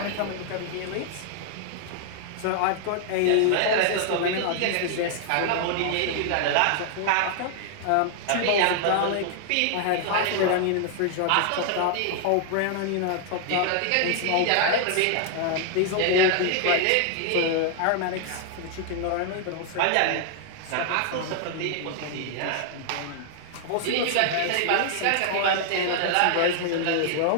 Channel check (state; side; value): different; both; correlation 0.00